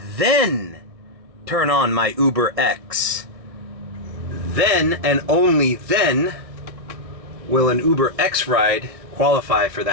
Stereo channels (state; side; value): late; left; 1.6 ms